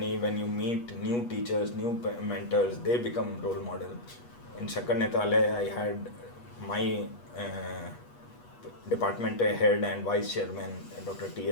when you meet new teachers, new mentors, they become role model. In Shakarnetale, I had my department head and vice chairman, Dr.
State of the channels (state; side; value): late; right; 8.3 ms